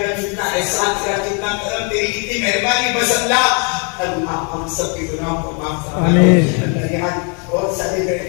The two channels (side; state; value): right; quieter; 36.7 dB